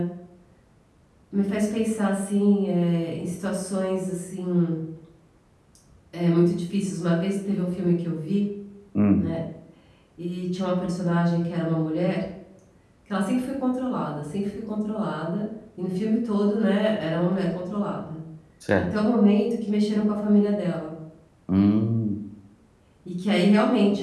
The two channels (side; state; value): both; identical; correlation 1.00